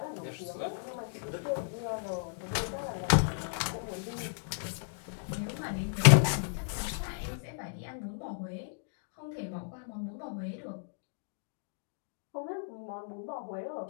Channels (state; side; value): silent; right; digital silence